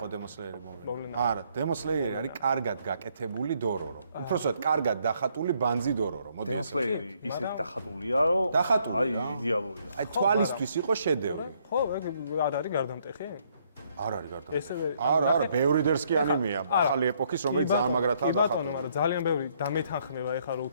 Demon Slayer-ი მოვლენა. არა, Demon Slayer-ი არის კარგად გაკეთებული დორორო. უბრალოდ კარგად დახატული ბანძი დორორო. Demon Slayer-ი ისეთ დახატულია, რომ აი იდეალურია. აი თვალისთვის იყო შედევრი. ხო, ეგ არ არის გარდამტეხი? არ არის გარდამტეხი. არა, ბევრი დერსკი ანიმეა, ახალი ეპოქის, რომელიც ძალიან მაგრათაა დახატული. ბატონო, მაგრამ ძალიან ბევრი დამეთანხმება ეხლა რომ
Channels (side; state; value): both; inverted; correlation -0.69